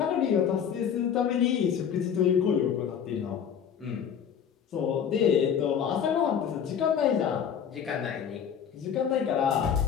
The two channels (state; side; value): quieter; right; 8.0 dB